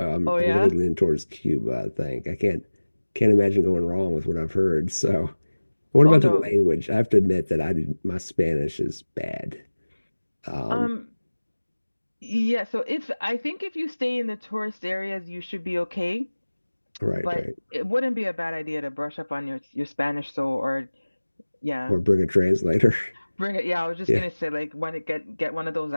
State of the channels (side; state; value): both; inverted; correlation -1.00